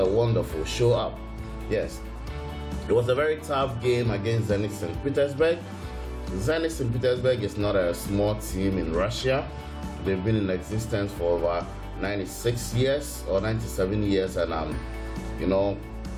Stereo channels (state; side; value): identical; both; correlation 1.00